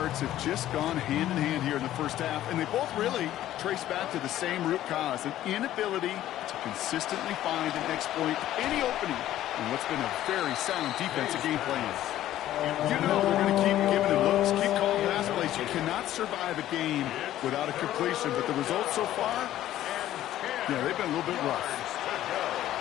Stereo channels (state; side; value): quieter; right; 13.2 dB